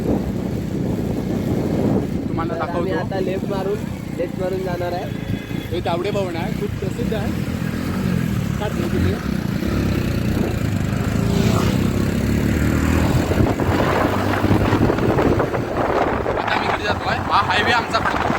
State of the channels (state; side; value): identical; both; correlation 1.00